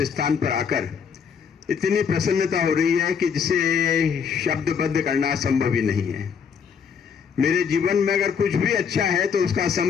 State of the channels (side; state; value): right; quieter; 6.7 dB